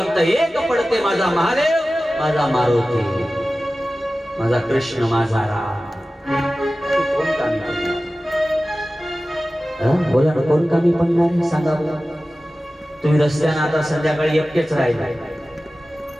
एक पडते, माझा महादेव, माझा मारुती, माझा कृष्ण, माझा राम. कोण कामी पडणार? बोला ना, कोण कामी पडणार सांगा बघा. तुम्ही रस्त्यानं आता संध्याकाळी एकटेच राहिले,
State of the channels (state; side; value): normal; both; correlation 0.96